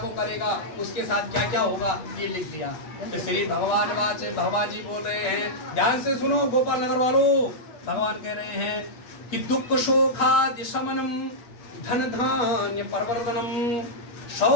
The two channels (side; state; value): right; late; 8.2 ms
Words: करेगा उसके साथ क्या क्या होगा, ये लिख दिया। तो श्री भगवान जी बोल रहे हैं, ध्यान से सुनो गोपाल नगर वालों, भगवान कह रहे हैं कि दुख शोखादि शमनम धन धान्य परवर्धनम